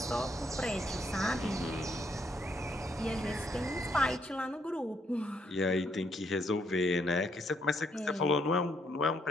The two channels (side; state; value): both; normal; correlation 0.73